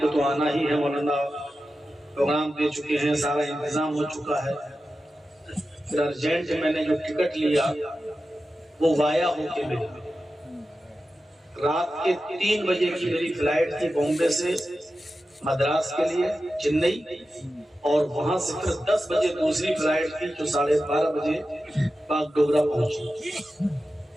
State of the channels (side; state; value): both; normal; correlation 0.92